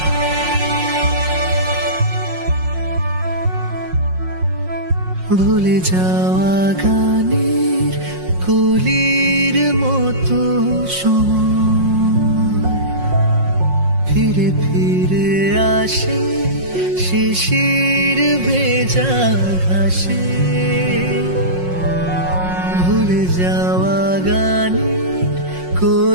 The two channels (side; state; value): left; late; 5.5 ms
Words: ভুলে যাওয়া গানের কলির মতো সময় ফিরে ফিরে আসে শিশির ভেজা ঘাসে। ভুলে যাওয়া গানের